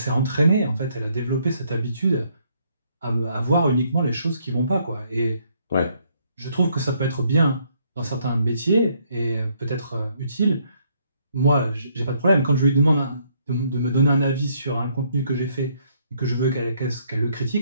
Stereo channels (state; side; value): inverted; both; correlation -0.69